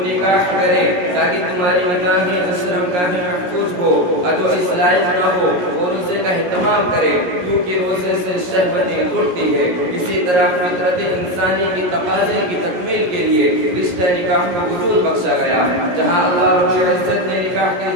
نکاح کرے تاکہ تمہاری نکاحیں شرمگاہیں محفوظ ہو. تو اس لائق نہ ہو اور روزے کا اہتمام کرے کیونکہ روزے سے شہوتیں ٹوٹتی ہے. اسی طرح فطرت انسانی کی تقاضے کی تکمیل کے لیے رشتہ نکاح کو وجود بخشا گیا. جہاں اللہ رب العزت نے نکاح کی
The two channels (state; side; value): late; left; 17 ms